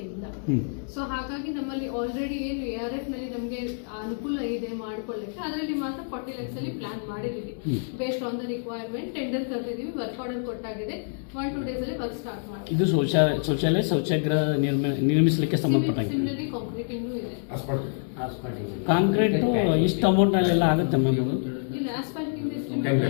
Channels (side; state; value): right; silent; 60 dB below the other